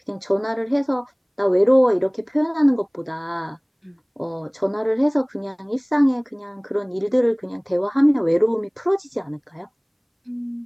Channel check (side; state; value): both; identical; correlation 1.00